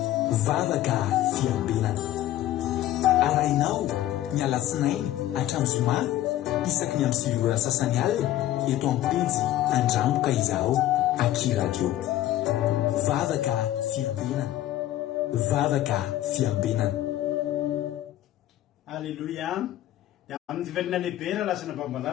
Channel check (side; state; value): right; quieter; 13.6 dB